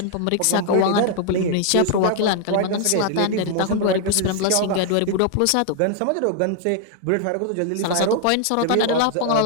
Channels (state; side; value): different; both; correlation 0.00